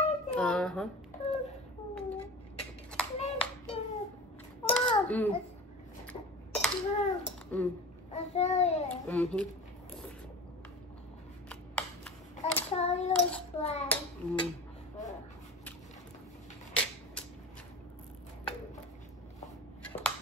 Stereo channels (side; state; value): both; normal; correlation 0.33